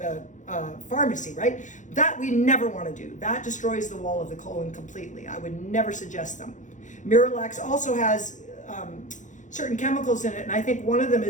pharmacy, right? That we never want to do. That destroys the wall of the colon completely. I would never suggest them. Miralax also has certain chemicals in it, and I think one of them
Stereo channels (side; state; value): right; late; 0.36 ms